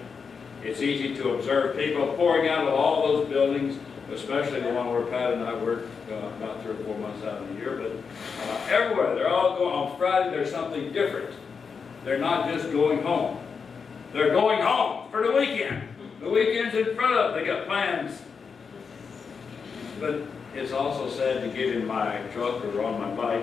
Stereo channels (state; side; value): quieter; right; 5.7 dB